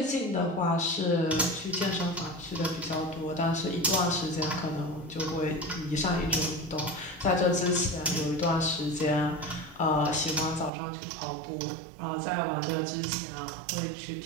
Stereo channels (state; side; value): drops out; left; at 10.7 s